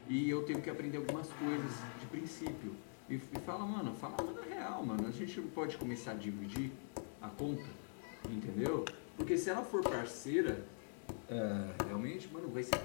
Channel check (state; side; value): silent; right; digital silence